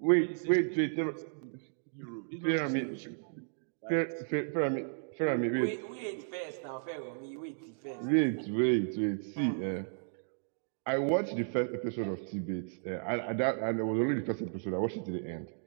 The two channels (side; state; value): left; silent; digital silence